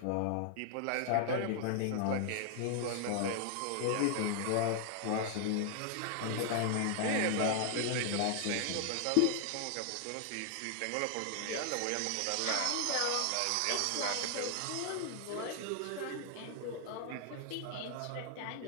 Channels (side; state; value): both; different; correlation 0.00